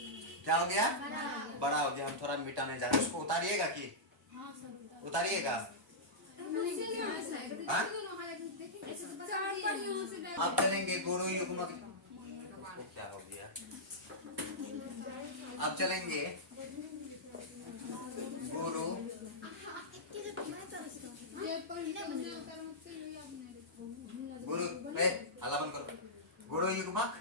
क्या हो गया, बड़ा हो गया। हम थोड़ा मिटाने जा रहे हैं, उसको उतारिएगा कि उतारिएगा। अब चलेंगे गुरु युग्मक, क्या हो गया, अब चलेंगे गुरु अल्लाह बंद करो, गुरु युग्मक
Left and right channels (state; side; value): normal; both; correlation -0.12